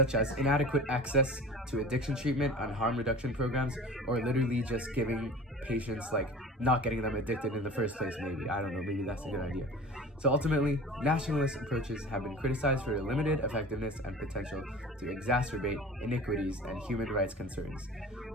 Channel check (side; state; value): both; normal; correlation 0.40